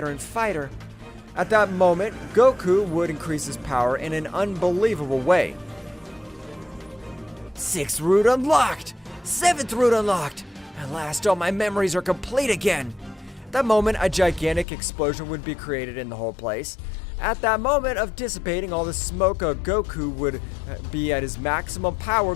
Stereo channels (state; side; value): drops out; right; at 14.7 s